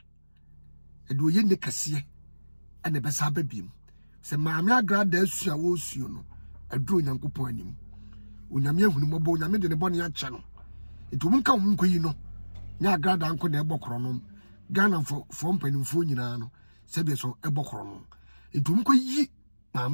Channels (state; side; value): inverted; both; correlation -1.00